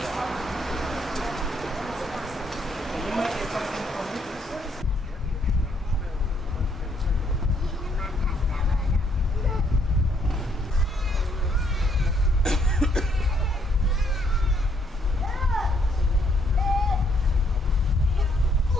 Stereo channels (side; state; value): both; normal; correlation 0.70